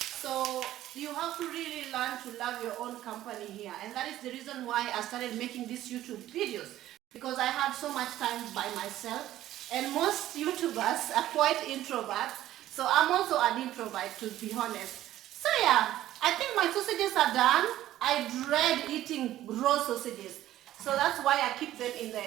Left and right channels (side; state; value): left; quieter; 13.7 dB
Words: So you have to really learn to love your own company here. And that is the reason why I started making these YouTube videos, because I have so much time by myself. And most YouTubers are quite introverts. So I'm also an introvert, to be honest. So yeah, I think my sausages are done. I dread eating raw sausages. So that's why I keep them